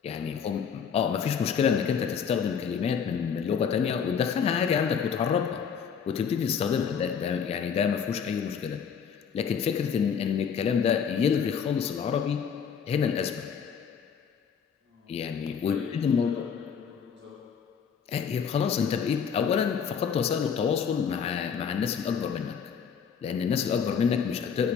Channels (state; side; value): quieter; right; 7.0 dB